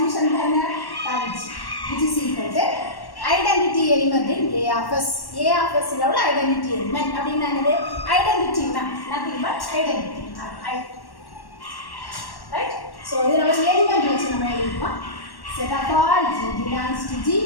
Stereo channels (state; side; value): late; right; 1.1 ms